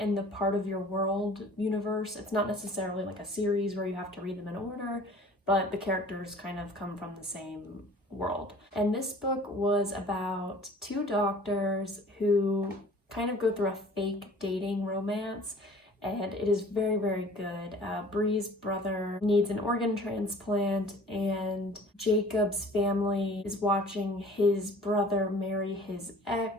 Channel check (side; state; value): both; normal; correlation 0.48